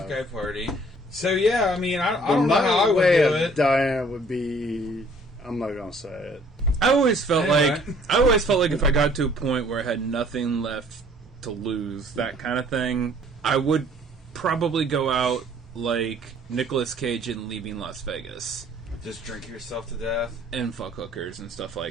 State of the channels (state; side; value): normal; both; correlation 0.57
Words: guy party. So yeah, I mean, I don't know how I would do it. Dying would be. I'm not gonna say it. I always felt like if I got to a point where I had nothing left to lose, that kind of thing, I would probably go out like Nicolas Cage in Leaving Las Vegas. Just drink yourself to death and fuck hookers and stuff